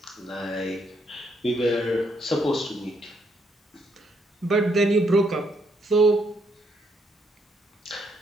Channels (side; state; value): both; normal; correlation 0.74